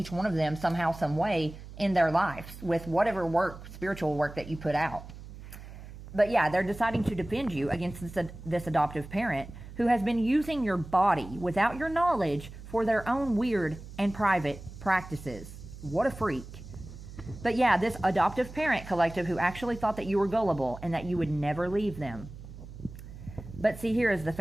one of them somehow, some way in their lives with whatever spiritual work that you put out. But yeah, they're deciding to defend you against this adoptive parent who has been using your body without your knowledge for their own weird and private practices. What a freak. But yeah, this adoptive parent, collective, who actually thought that you were gullible and that you would never leave them. But see, here is the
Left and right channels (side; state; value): right; noise; hum, 14 dB below the sound